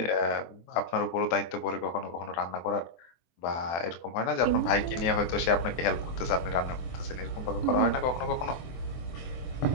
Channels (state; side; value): late; right; 24 ms